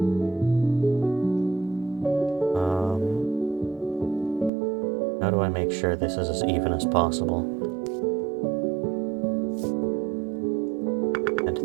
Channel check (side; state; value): left; drops out; at 4.5 s